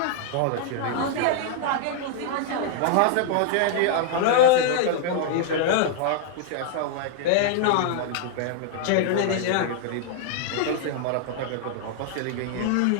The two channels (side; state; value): both; different; correlation -0.01